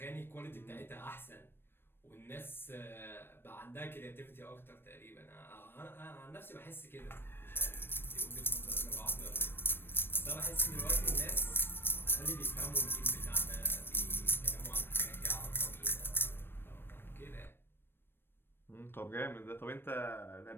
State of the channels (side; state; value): right; late; 0.10 ms